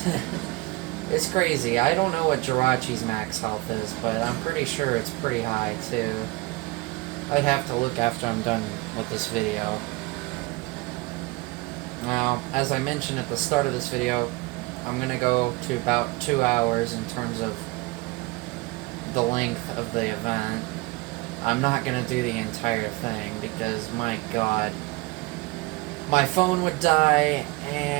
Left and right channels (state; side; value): quieter; left; 22.8 dB